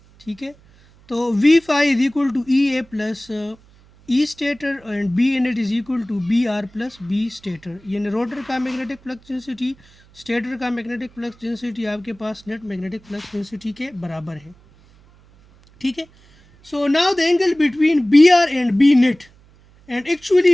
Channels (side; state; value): right; noise; hum, 28 dB below the sound